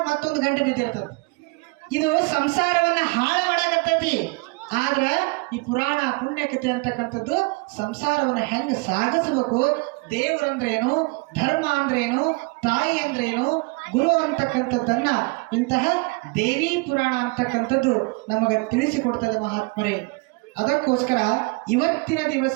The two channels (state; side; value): quieter; left; 27.7 dB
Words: ಮತ್ತೊಂದು ಗಂಟೆ ಬಿದ್ದಿರ್ತದ. ಇದು ಸಂಸಾರವನ್ನ ಹಾಳು ಮಾಡಾಕತ್ತೈತಿ. ಆದ್ರ ಈ ಪುರಾಣ ಪುಣ್ಯಕಥೆ ಅಂತಕ್ಕಂಥದ್ದು ಸಂಸಾರವನ್ನ ಹೆಂಗ್ ಸಾಗಿಸಬೇಕು, ದೇವರಂದ್ರೇನು, ಧರ್ಮ ಅಂದ್ರೇನು, ತಾಯಿ ಅಂದ್ರೇನು, ಗುರು ಅಂತಕ್ಕಂಥದ್ದನ್ನ ಇಂತಹ ದೇವಿ ಪುರಾಣ ಅಂತಕ್ಕಂಥದ್ದು ನಮಗ ತಿಳಿಸಿಕೊಡ್ತದೆ ಮಹಾತ್ಮರೇ. ಅದಕ್ಕೋಸ್ಕರ ಇವತ್ತಿನ